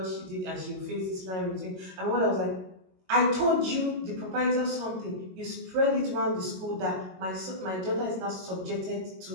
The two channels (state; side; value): late; left; 22 ms